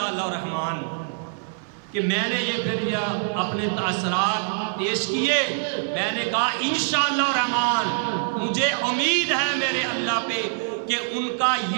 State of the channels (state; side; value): silent; left; 62 dB below the other